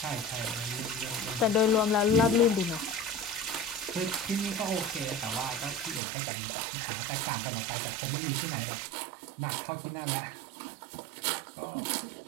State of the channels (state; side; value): drops out; left; at 6.0 s